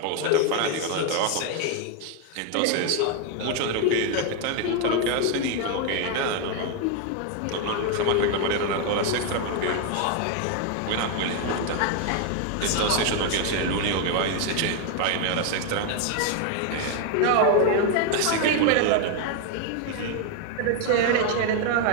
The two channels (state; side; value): different; both; correlation 0.01